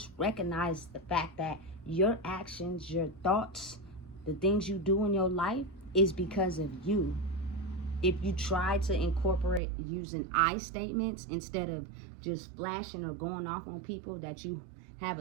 recognize the fact that your actions, your thoughts, the things you do in your life is because of you. If you try to incorporate using I statements instead of just flashing or going off on people that you have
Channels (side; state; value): left; drops out; at 9.6 s